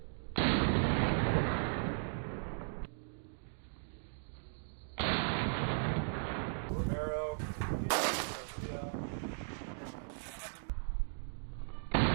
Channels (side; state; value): left; silent; digital silence